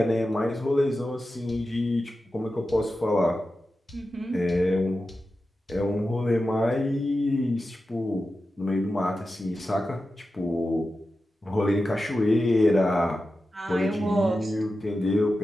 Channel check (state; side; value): normal; both; correlation 0.92